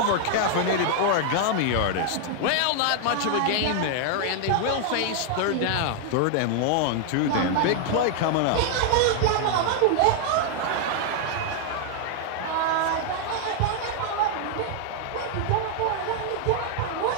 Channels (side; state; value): both; different; correlation 0.00